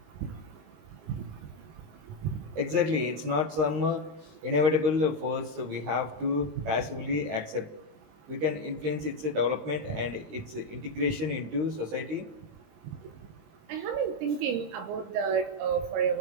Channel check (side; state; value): left; late; 19 ms